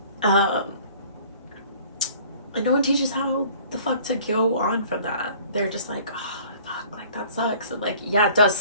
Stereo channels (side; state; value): both; inverted; correlation -0.51